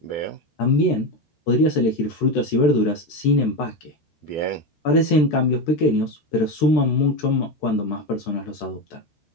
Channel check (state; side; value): late; right; 13 ms